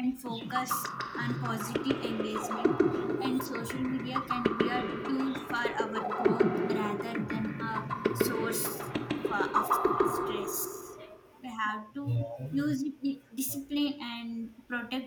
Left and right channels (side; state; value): both; identical; correlation 1.00